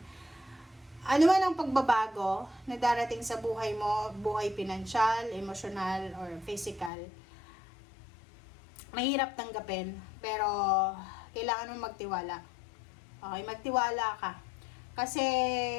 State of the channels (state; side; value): drops out; right; at 6.9 s